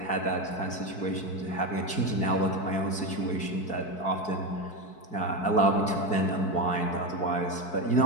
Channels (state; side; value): late; right; 4.6 ms